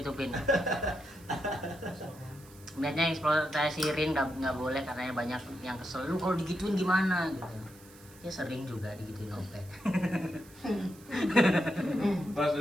Niatnya eksploitasi Rin nggak boleh karena banyak yang kesel. Lu kalau digituin gimana gitu. Ya sering juga digituin Ope. Balas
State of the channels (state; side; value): noise; right; hiss, 23 dB below the sound